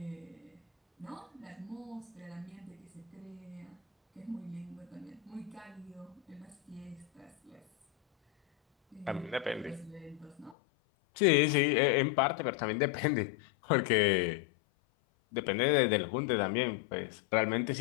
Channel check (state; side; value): drops out; right; at 10.6 s